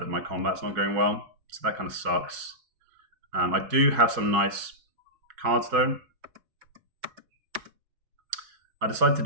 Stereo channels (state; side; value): late; left; 4.6 ms